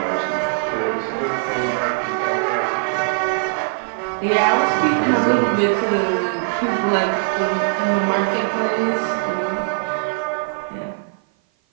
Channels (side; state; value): left; silent; 56 dB below the other